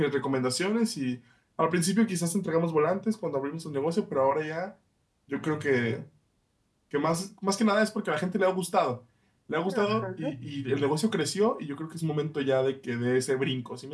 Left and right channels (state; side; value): identical; both; correlation 1.00